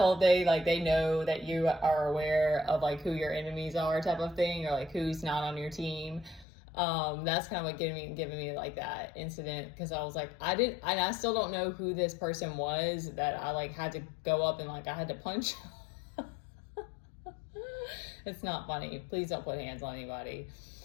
thing. Like they know that you are aware of like who your enemies are type of thing, or like who's not on your team. That's kind of what giving me like that incident, because I was like, I still don't know who this person was that I like had to go up and like I had to punch. It's not funny. Please don't put hands on anybody.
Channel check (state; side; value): drops out; right; at 6.5 s